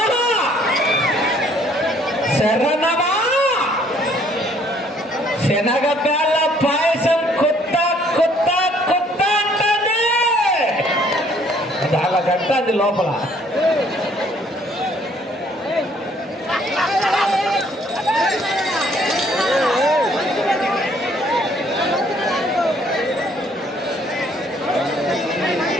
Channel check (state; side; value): normal; both; correlation 0.62